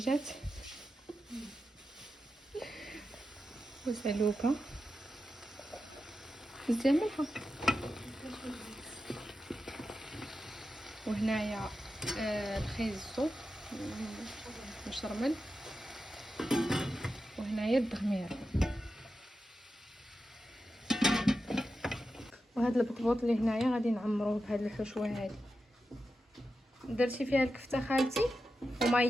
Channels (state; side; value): normal; both; correlation 0.90